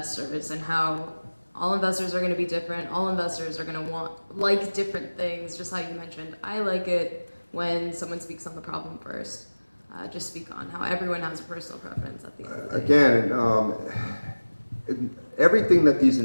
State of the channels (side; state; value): both; inverted; correlation -1.00